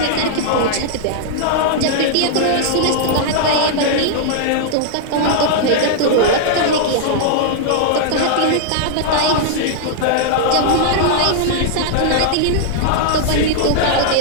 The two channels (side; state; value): both; different; correlation -0.01